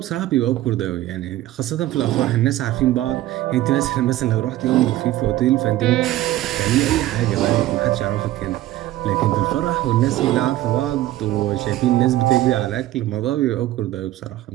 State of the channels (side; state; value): left; quieter; 14.9 dB